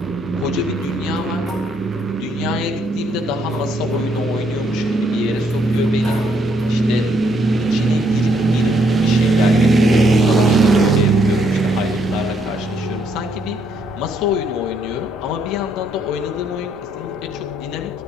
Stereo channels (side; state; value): both; normal; correlation 0.72